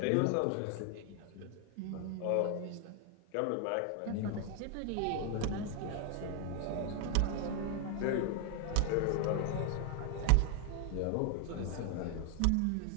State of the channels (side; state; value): both; different; correlation 0.01